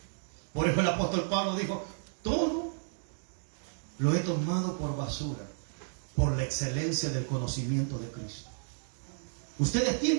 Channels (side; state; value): left; silent; digital silence